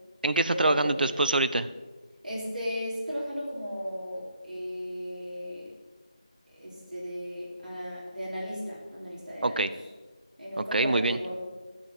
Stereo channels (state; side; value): inverted; both; correlation -0.65